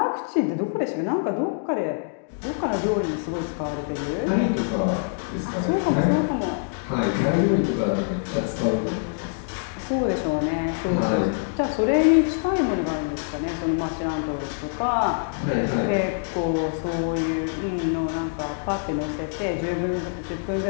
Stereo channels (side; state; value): right; silent; digital silence